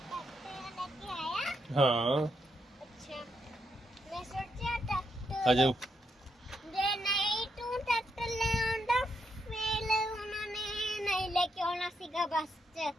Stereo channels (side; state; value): both; normal; correlation 0.80